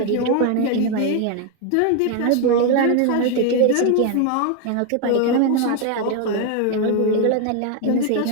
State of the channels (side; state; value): both; different; correlation 0.01